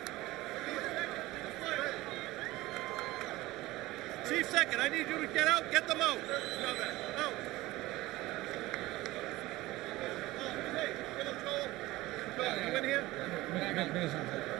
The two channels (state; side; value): quieter; left; 18.5 dB